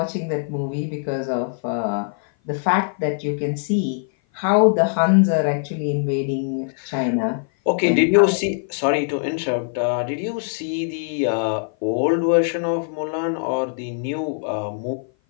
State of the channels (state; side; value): silent; right; 56 dB below the other